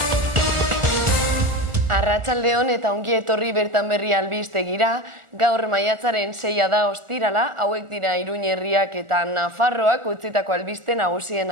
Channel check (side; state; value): left; late; 1.4 ms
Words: Arratsaldeon eta ongi etorri bertan berri albistegira. Gaur maiatzaren 6 da ostirala, hauek dira Iruña herriak eta Nafarroak utzitako albiste